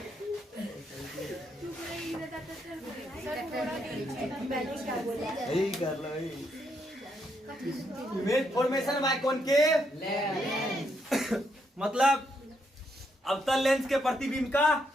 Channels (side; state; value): both; normal; correlation 0.77